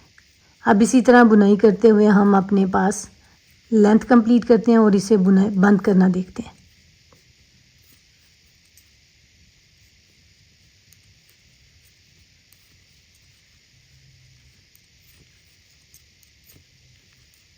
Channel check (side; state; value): both; identical; correlation 1.00